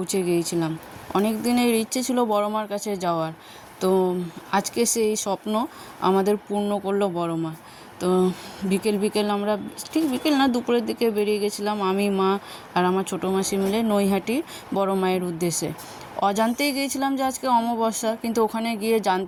গিয়েছিলাম। অনেক দিনের ইচ্ছে ছিল বড় মার কাছে যাওয়ার, তো আজকে সেই স্বপ্ন আমাদের পূর্ণ করলো বড় মা। তো বিকেল আমরা, ঠিক বিকেল না, দুপুরের দিকে বেরিয়ে গেছিলাম আমি, মা আর আমার ছোটো মাসি মিলে নৈহাটি বড় মায়ের উদ্দেশ্যে। অজান্তেই গিয়েছিলাম যে আজকে অমাবস্যা, কিন্তু ওখানে গিয়ে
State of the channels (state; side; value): identical; both; correlation 1.00